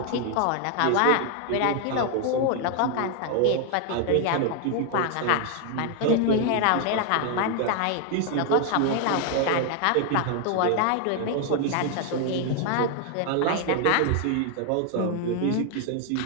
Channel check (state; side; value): different; both; correlation 0.00